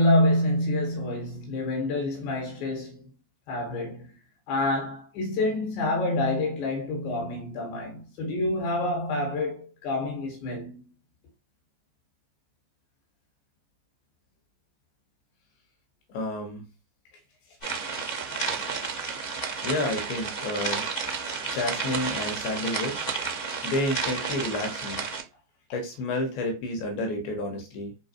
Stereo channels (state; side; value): late; right; 14 ms